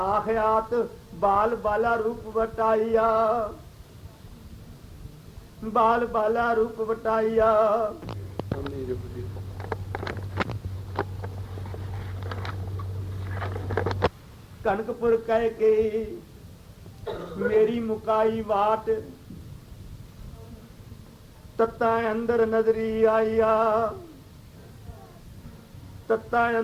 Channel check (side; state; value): both; identical; correlation 1.00